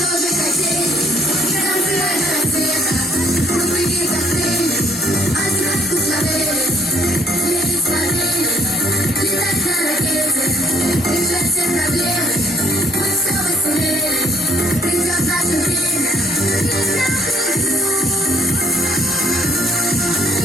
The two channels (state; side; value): normal; both; correlation 0.65